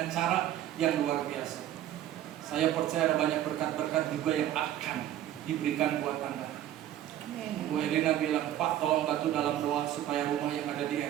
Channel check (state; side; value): quieter; left; 12.1 dB